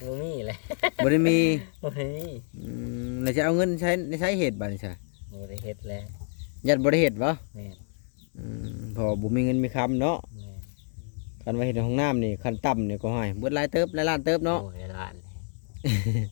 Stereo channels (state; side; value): silent; right; 59 dB below the other